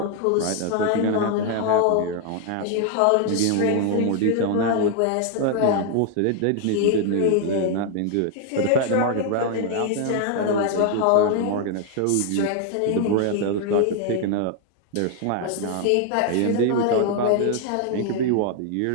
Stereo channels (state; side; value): different; both; correlation 0.00